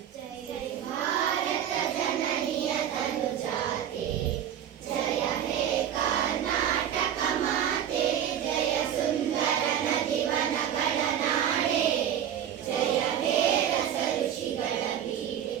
ಜೈ ಭಾರತ ಜನನಿಯ ತನುಜಾತೆ, ಜಯ ಹೇ ಕರ್ನಾಟಕ ಮಾತೆ, ಜಯ ಸುಂದರ ನದಿವನಗಳ ನಾಡೆ, ಜಯ ಹೇ ರಸ ಋಷಿಗಳ ಬೀಡೆ.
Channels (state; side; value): quieter; left; 9.8 dB